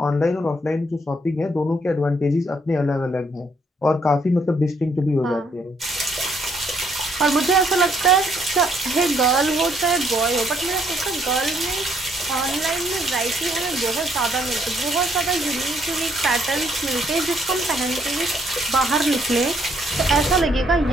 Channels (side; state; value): both; normal; correlation 0.69